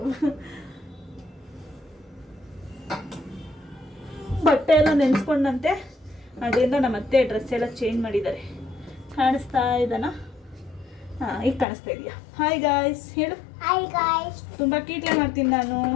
ಬಟ್ಟೆ ಎಲ್ಲ ನೆನೆಸ್ಕೊಂಡಂತೆ, ಅದರಿಂದ ನಮ್ಮ ಅತ್ತೆ ಡ್ರೆಸ್ ಎಲ್ಲ ಚೇಂಜ್ ಮಾಡಿದ್ದಾರೆ. ಕಾಣಿಸ್ತಾ ಇದ್ದಾನ? ಈಗ ಕಾಣಿಸ್ತಾ ಇದೆಯಾ? ಹಾಯ್ ಗಾಯ್ಸ್ ಹೇಳು. Hi guys. ತುಂಬ ಕೀಟ್ಲೆ ಮಾಡ್ತೀನಿ ನಾನು.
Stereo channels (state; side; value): drops out; right; at 11.7 s